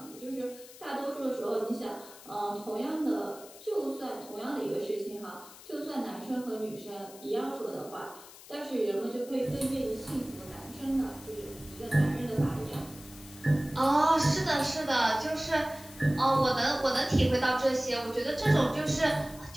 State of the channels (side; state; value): left; noise; hiss, 19 dB below the sound